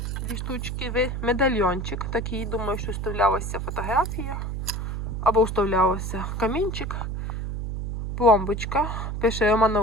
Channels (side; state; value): right; noise; hum, 3 dB below the sound